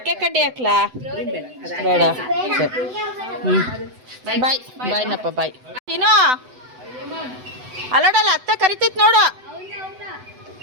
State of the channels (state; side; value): late; left; 7.9 ms